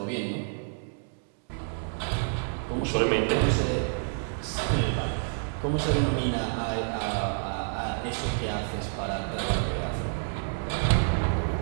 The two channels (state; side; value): silent; left; 59 dB below the other